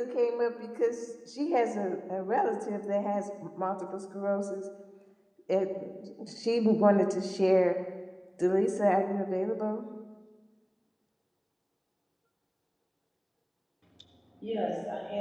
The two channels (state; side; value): identical; both; correlation 1.00